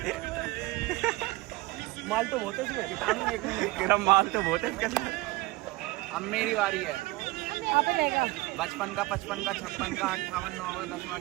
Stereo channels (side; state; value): left; quieter; 20.8 dB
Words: माल तो बहुत है इसमें, माल तो बहुत है इसके अंदर। अब मेरी बारी है। बचपन का 55 का 56 का 58 9 10